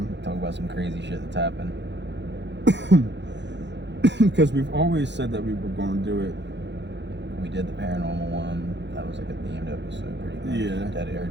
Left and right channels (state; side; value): late; left; 0.52 ms